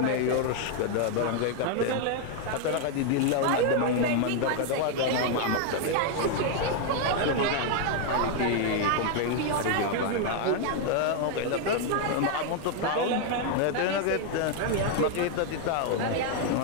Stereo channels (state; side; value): different; both; correlation 0.00